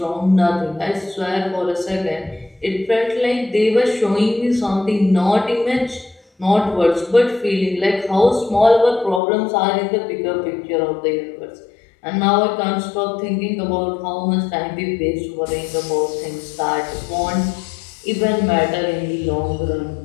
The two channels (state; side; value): drops out; right; at 9.2 s